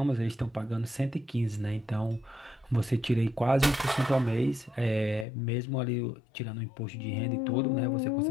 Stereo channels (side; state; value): right; drops out; at 5.2 s